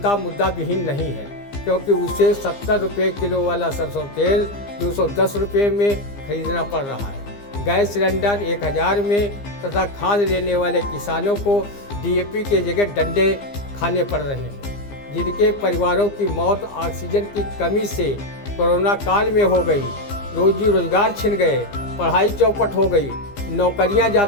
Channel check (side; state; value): right; late; 15 ms